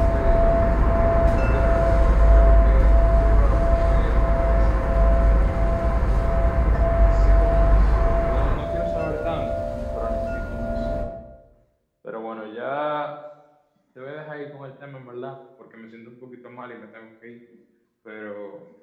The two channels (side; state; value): both; identical; correlation 1.00